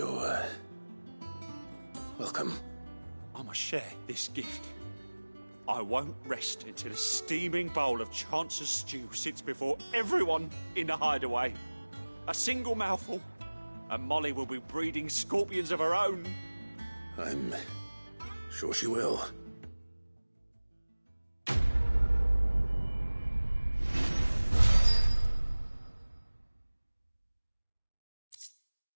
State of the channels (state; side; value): inverted; both; correlation -1.00